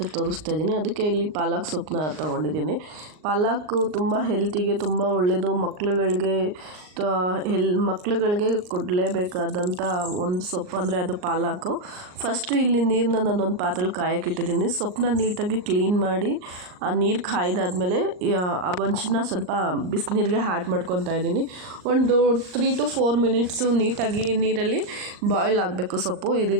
ತೋರಿಸ್ತಾ ಇದ್ದೀನಿ. ಅದಕ್ಕೆ ಇಲ್ಲಿ ಪಾಲಕ್ ಸೊಪ್ಪನ್ನ ತೊಗೊಂಡಿದ್ದೀನಿ. ಪಾಲಕ್ಕು ತುಂಬ ಹೆಲ್ತಿಗೆ ತುಂಬ ಒಳ್ಳೆಯದು. ಮಕ್ಳುಗಳಿಗೆ ಕೊಡಲೇಬೇಕಾದಂಥ ಒಂದು ಸೊಪ್ಪು ಅಂದರೆ ಅದು ಪಾಲಕ್ಕು. ಫಸ್ಟು ಇಲ್ಲಿ ನೀರನ್ನ ನಾನೊಂದು ಪಾತ್ರೆಯಲ್ಲಿ ಕಾಯಕ್ಕಿಟ್ಟಿದ್ದೀನಿ. ಸೊಪ್ಪನ್ನ ನೀಟಾಗಿ ಕ್ಲೀನ್ ಮಾಡಿ ಆ ನೀರು ಕಾಯ್ದಾದ್ಮೇಲೆ ಆ ಒಂಚನ್ನ ಸ್ವಲ್ಪ ಬಿಸಿನೀರಿಗೆ ಆ್ಯಡ್ ಮಾಡ್ಕೊತಾ ಇದ್ದೀನಿ. ಒಂದು 3 to 4 ಮಿನಿಟ್ಸು ನೀಟಾಗಿ ನೀರಲ್ಲಿ ಬಾಯ್ಲ್ ಆಗಬೇಕು ಸೊಪ್ಪು. ಈ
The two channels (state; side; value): late; left; 39 ms